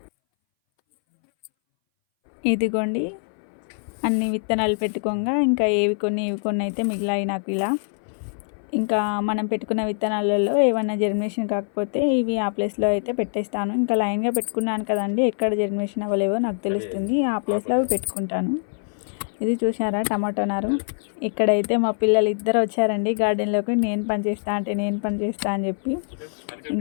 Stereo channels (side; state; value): right; silent; 61 dB below the other